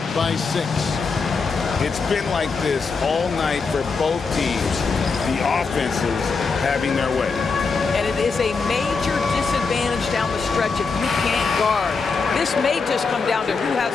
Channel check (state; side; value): quieter; right; 4.7 dB